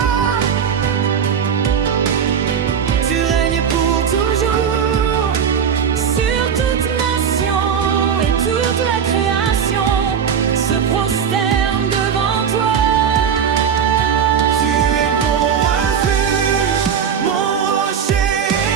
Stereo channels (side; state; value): left; quieter; 7.5 dB